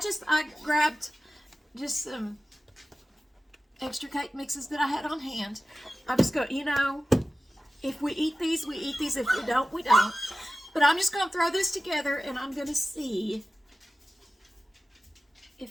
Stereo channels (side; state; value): both; normal; correlation 0.95